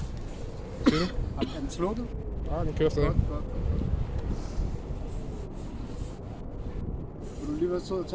Hvad siger du? Er den slukket? Ja, den kører stadig. Godt. Vil du lige være sød at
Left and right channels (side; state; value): both; identical; correlation 1.00